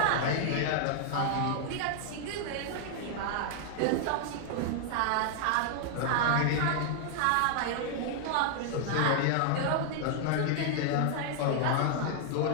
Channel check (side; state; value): both; different; correlation 0.00